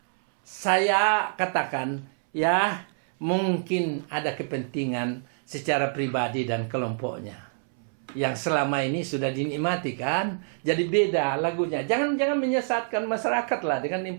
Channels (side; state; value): left; silent; 61 dB below the other